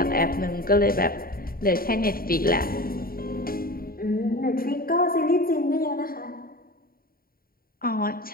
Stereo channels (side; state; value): right; late; 0.43 ms